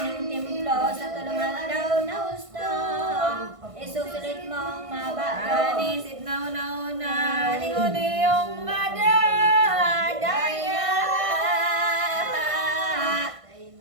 templo sa tulungan daw na husto. Isusulit mong mabago. Anisip na una-una, lingon iyong madadaya.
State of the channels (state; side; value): late; left; 1.5 ms